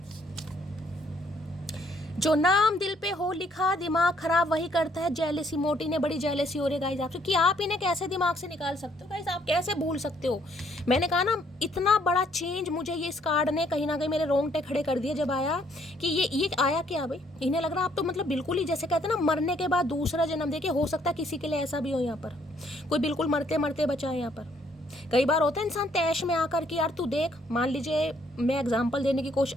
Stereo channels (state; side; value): normal; both; correlation 0.67